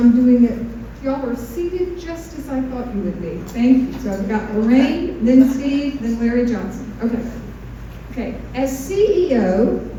doing it, y'all are seated just as I thought you would be. Thank you. So I've got Lorraine, then Steve, then Larry Johnson. Okay. Okay. As CEO,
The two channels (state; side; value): identical; both; correlation 1.00